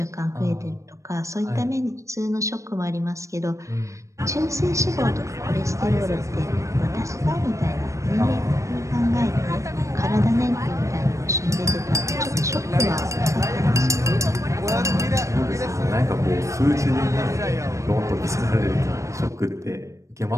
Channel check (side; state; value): left; late; 0.15 ms